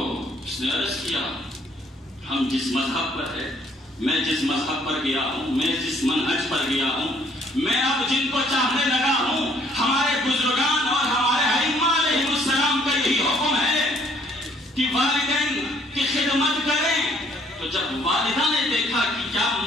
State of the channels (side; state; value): both; normal; correlation 0.63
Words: اس نے عرض کیا ہم جس مذہب پر ہے، میں جس مذہب پر گیا ہوں، میں جس منہج پر گیا ہوں، میں اب جن کو چاہنے لگا ہوں، ہمارے بزرگان اور ہمارے ائمہ علیہ السلام کا یہی حکم ہے کہ والدین کی خدمت کریں۔ تو جب والدہ نے دیکھا کہ کیا